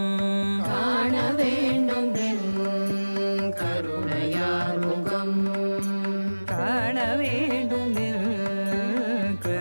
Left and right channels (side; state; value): both; inverted; correlation -1.00